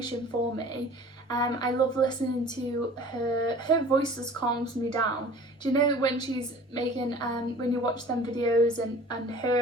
for me. I love listening to her voice just calms me down. Do you know when she's making when you watch them videos and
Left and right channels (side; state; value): both; normal; correlation 0.45